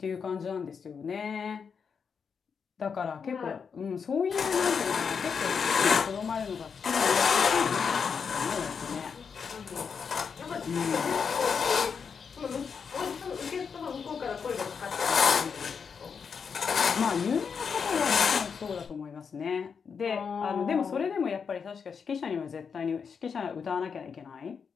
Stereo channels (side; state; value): right; quieter; 6.2 dB